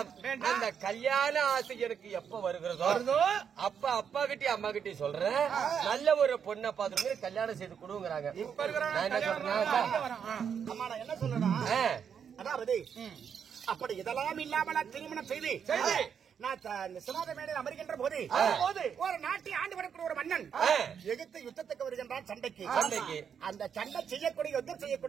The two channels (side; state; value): left; quieter; 7.5 dB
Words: அந்த கல்யாண ஆசை எனக்கு எப்ப வருகிறதோ அப்ப அப்பா கிட்டயும் அம்மா கிட்டயும் சொல்றேன், நல்ல ஒரு பொண்ணை பார்த்து கல்யாணம் செய்து கொடுங்கிறாங்க. என்ன சொல்றேன்? அதாவது அப்படி இதெல்லாம் இல்லாமல் திருமணம் செய்து நான் சிவாத மேடையில் அமர்கின்ற போது ஒரு நாட்டை ஆண்டு வரக்கூடிய ஒரு மன்னன் எகிப்து யுத்தத்துக்கு வருகின்றான் சண்டைக்கு. அந்த சண்டை செய்யக்கூடிய யுத்தம்